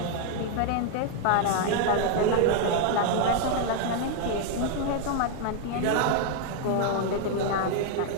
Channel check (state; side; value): different; both; correlation 0.00